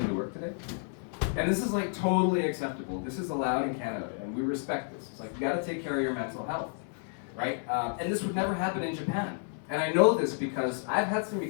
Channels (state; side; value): silent; right; 57 dB below the other